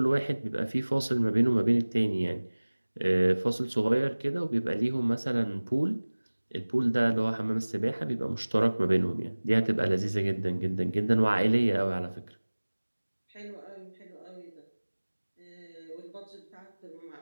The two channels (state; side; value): inverted; both; correlation -1.00